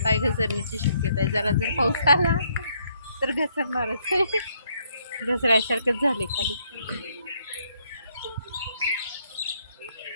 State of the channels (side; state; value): both; inverted; correlation -0.71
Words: पाय घसरण्याची शक्यता आहे. जरा जर पाऊस आला तर घसरणारच आहे. घसऱ्यासारखंच झाले खाली.